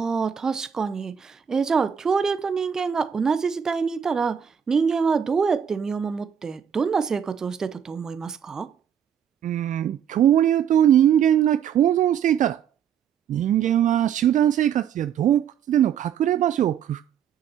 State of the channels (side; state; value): left; quieter; 8.4 dB